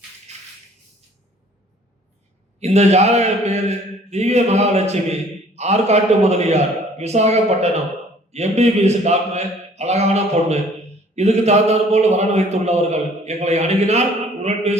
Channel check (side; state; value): both; normal; correlation 0.55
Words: இந்த ஜாதக பேரு திவ்ய மகாலட்சுமி, ஆற்காட்டு முதலியார், விசாகப்பட்டினம், எம்பிபிஎஸ் டாக்டர், அழகான பொண்ணு. இதுக்கு தகுந்தாற் போல் வரன் வைத்துள்ளவர்கள் எங்களை அணுகினால் உடன்